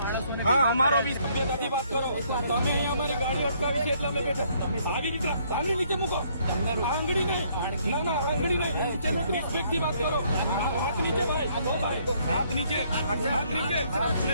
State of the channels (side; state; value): both; inverted; correlation -0.67